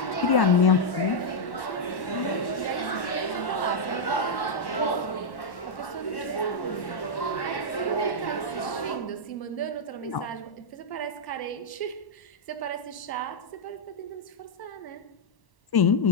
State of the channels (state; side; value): late; right; 1.0 ms